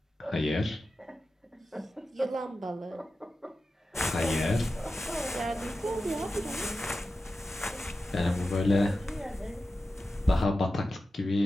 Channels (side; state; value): both; normal; correlation 0.92